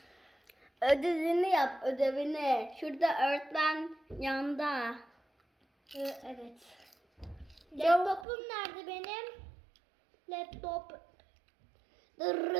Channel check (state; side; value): drops out; left; at 8.2 s